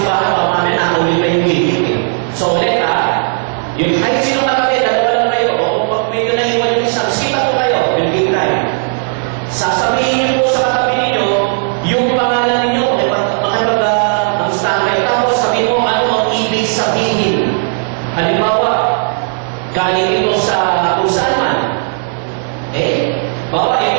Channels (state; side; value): silent; left; 63 dB below the other